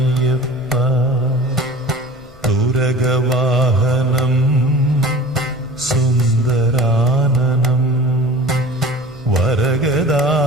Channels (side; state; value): both; normal; correlation 0.40